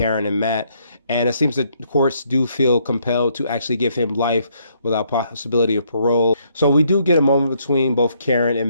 and Matt. And it seems that courts do feel compelled to actually give him life without possibility of parole. So we do get a moment between both Karen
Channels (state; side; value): inverted; both; correlation -0.71